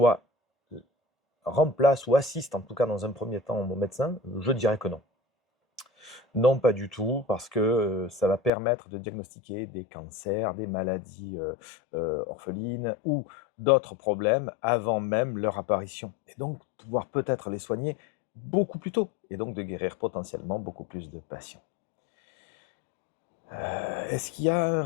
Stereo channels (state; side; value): drops out; right; at 8.5 s